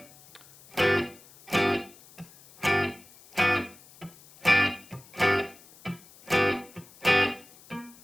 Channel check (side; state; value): left; noise; hiss, 24 dB below the sound